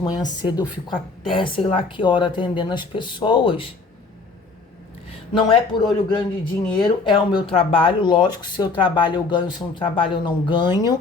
manhã cedo, eu fico até sei lá que hora atendendo as pessoas. Não é por olho grande de dinheiro, é o meu trabalho. Lógico, se eu trabalho eu ganho, se eu não trabalho eu não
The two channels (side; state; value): right; quieter; 3.9 dB